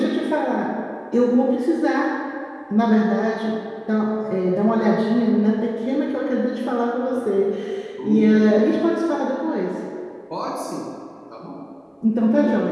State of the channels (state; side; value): identical; both; correlation 1.00